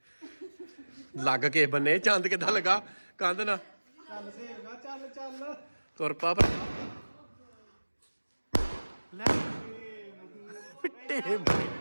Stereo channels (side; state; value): both; inverted; correlation -1.00